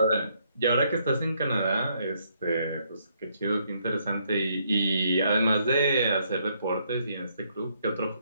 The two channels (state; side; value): inverted; both; correlation -0.72